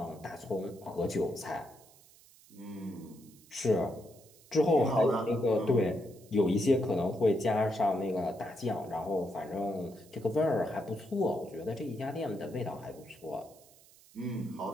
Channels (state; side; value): noise; right; hiss, 25 dB below the sound